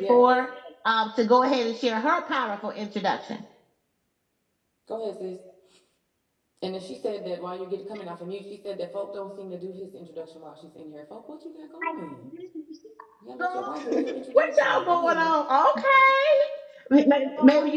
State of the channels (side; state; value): both; identical; correlation 1.00